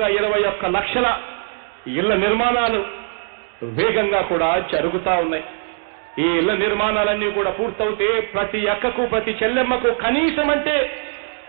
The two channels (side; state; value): left; silent; 65 dB below the other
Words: 21 లక్షల ఇళ్ల నిర్మాణాలు వేగంగా కూడా జరుగుతా ఉన్నాయి. ఈ ఇళ్ల నిర్మాణాలన్నీ కూడా పూర్తవుతే ప్రతి అక్కకు ప్రతి చెల్లెమ్మకు కనీసం, అంటే